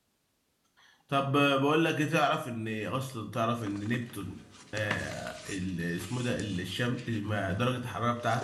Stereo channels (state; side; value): identical; both; correlation 1.00